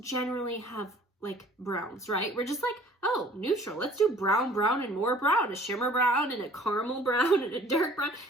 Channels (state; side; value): normal; both; correlation 0.52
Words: have like browns, right? We're just like, oh, neutral. Let's do brown, brown, and more brown. A shimmer brown and a caramel brown and a dark brown.